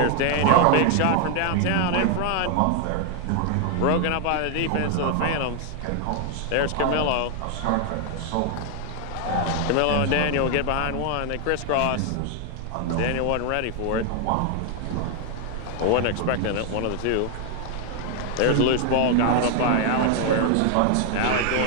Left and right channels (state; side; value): different; both; correlation 0.00